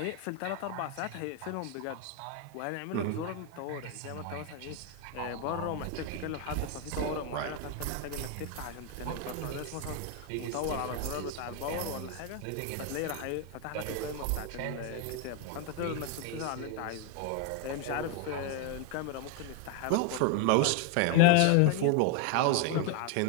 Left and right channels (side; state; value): both; different; correlation 0.01